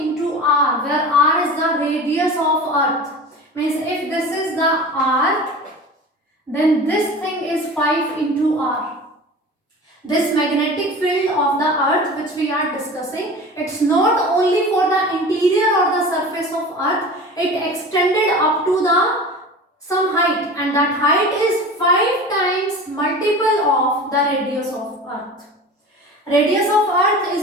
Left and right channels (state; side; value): normal; both; correlation 0.35